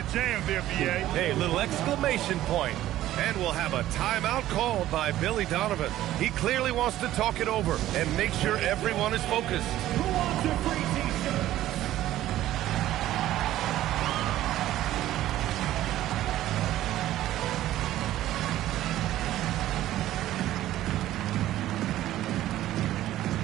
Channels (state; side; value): quieter; left; 14.0 dB